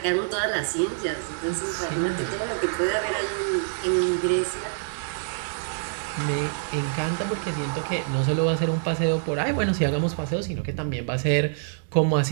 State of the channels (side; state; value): left; silent; digital silence